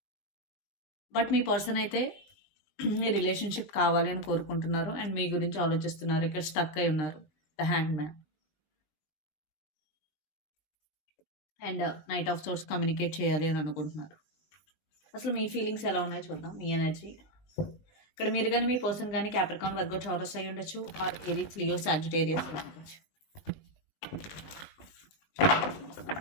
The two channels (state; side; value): late; right; 20 ms